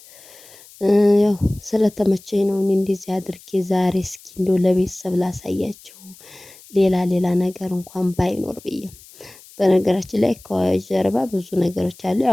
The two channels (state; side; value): noise; left; hiss, 22 dB below the sound